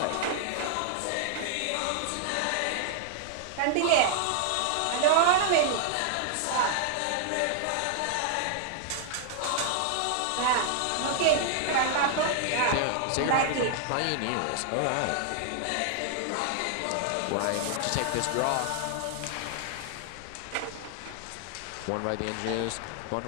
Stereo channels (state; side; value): different; both; correlation 0.00